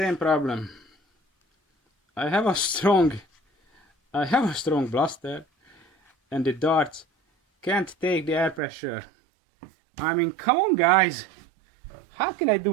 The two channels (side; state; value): left; drops out; at 8.6 s